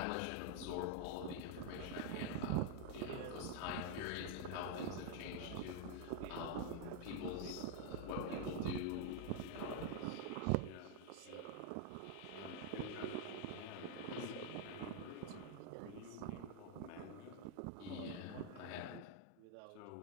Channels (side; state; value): both; different; correlation 0.00